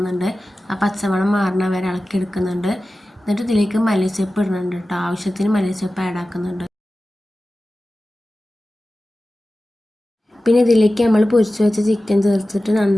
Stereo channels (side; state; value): both; normal; correlation 0.95